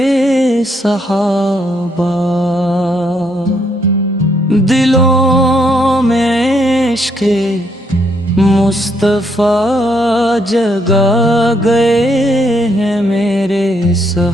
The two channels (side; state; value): both; normal; correlation 0.73